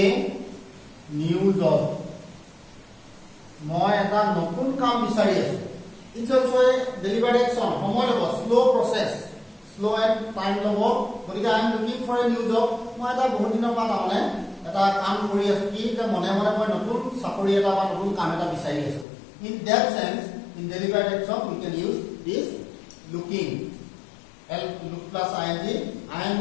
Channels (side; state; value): right; drops out; at 19.1 s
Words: new job মই এটা নতুন কাম বিচাৰি আছো It's also a deliberate action. Slow process, slow and time lobo. But I am looking for a new job. মই এটা বহুত দিনৰ পৰা মানে এটা কাম কৰি আছো কি যে মনে মনে মই নতুন চাকৰি এটা বা নতুন কাম এটা বিচাৰি আছো In that sense, in deliberate action, we can use this looking. Look plus ing. I am